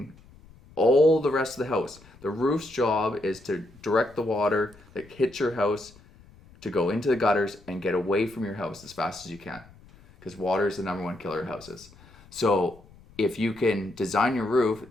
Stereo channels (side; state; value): left; noise; rumble, 24 dB below the sound